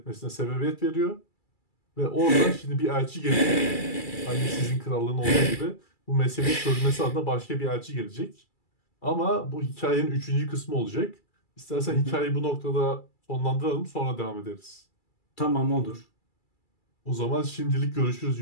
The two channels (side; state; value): right; late; 2.3 ms